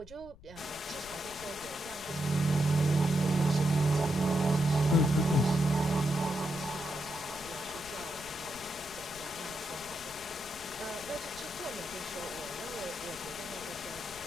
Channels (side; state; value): left; noise; rumble, 20 dB below the sound